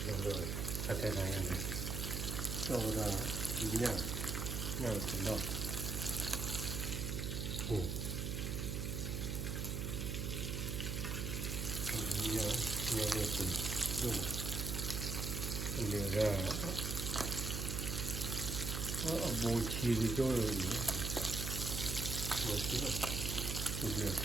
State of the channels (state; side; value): noise; right; hum, 2 dB below the sound